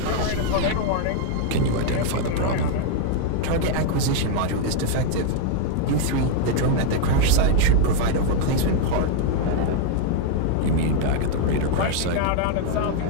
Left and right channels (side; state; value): both; different; correlation 0.00